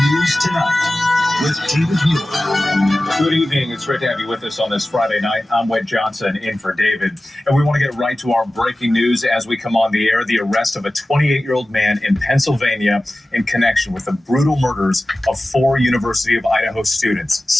News Tonight with David Muir. Good evening. It's great to have you with us on this Friday night. I'm Wade Johnson in for David. And we want to get right to our breaking news as we come on the air. The arrest of a 28-year-old man in Pennsylvania in connection with the brutal murders of 4 University of Idaho students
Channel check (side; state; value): both; normal; correlation 0.96